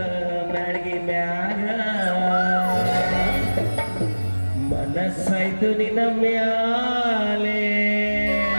ಮ್ಯಾಳ್ಗಿ ಮ್ಯಾಗ ಮನಸ್ಸಾಯ್ತು ನಿನ್ನ ಮ್ಯಾಲೆ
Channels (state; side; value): inverted; both; correlation -1.00